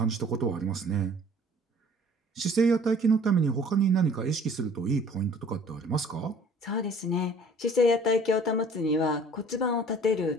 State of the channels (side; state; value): both; normal; correlation 0.52